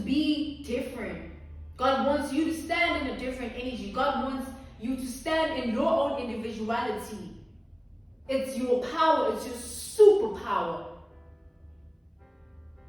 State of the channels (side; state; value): both; identical; correlation 1.00